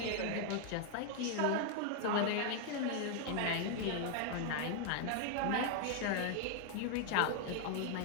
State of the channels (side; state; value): both; different; correlation 0.00